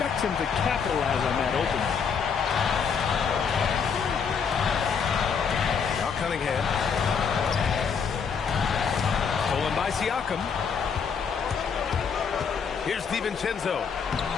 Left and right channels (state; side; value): quieter; right; 6.3 dB